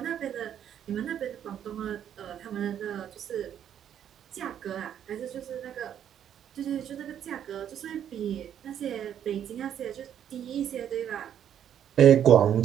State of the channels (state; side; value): quieter; left; 9.7 dB